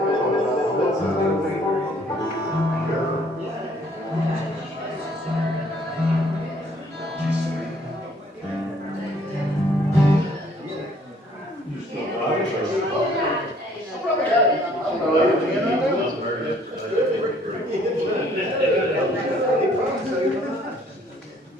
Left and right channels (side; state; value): both; normal; correlation 0.61